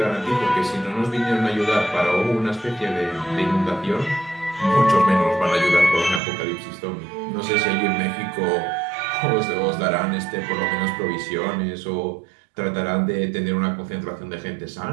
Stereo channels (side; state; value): left; drops out; at 6.2 s